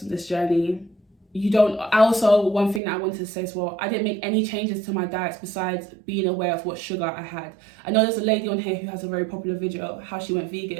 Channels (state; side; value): drops out; left; at 2.8 s